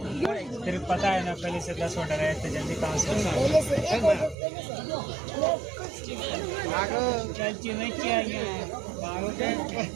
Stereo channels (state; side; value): drops out; left; at 4.4 s